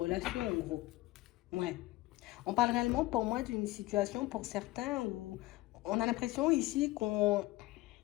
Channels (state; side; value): quieter; right; 19.1 dB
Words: en gros. Ouais. On parle réellement pour moi d'une situation pour certains où on a l'impression ici qu'on